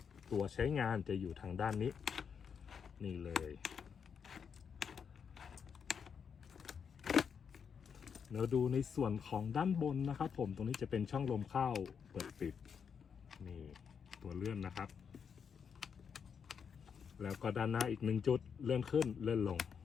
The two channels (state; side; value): quieter; right; 6.8 dB